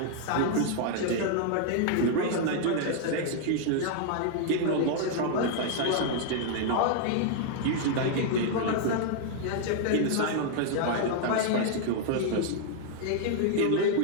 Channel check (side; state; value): both; different; correlation 0.00